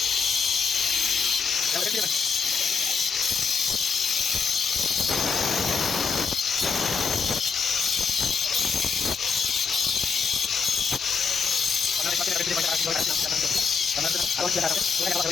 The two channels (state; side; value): quieter; right; 5.3 dB